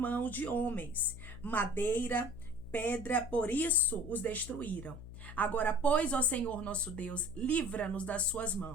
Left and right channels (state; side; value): noise; left; hum, 13 dB below the sound